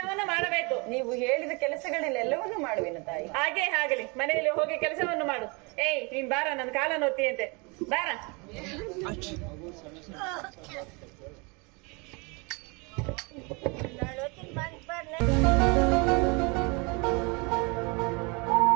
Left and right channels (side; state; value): left; quieter; 29.9 dB